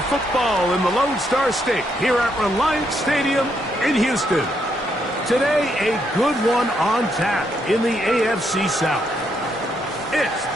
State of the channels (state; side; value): normal; both; correlation 0.76